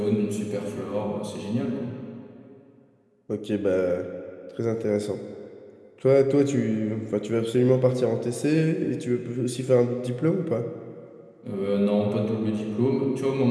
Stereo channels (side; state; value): both; identical; correlation 1.00